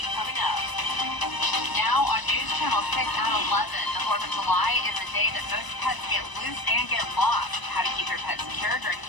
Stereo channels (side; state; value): right; late; 1.0 ms